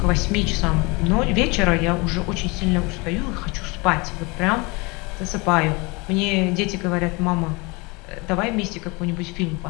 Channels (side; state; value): right; quieter; 27.0 dB